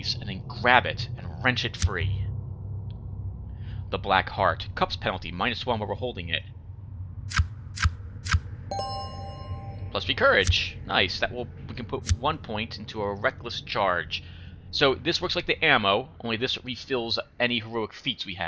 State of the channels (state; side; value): identical; both; correlation 1.00